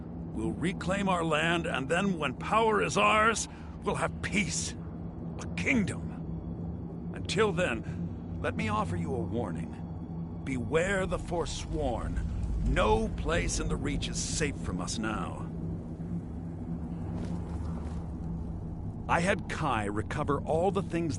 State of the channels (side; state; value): both; identical; correlation 1.00